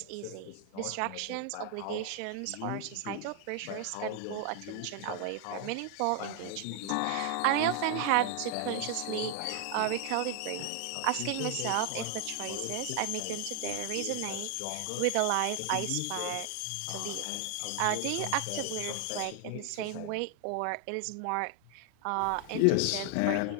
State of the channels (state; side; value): different; both; correlation 0.00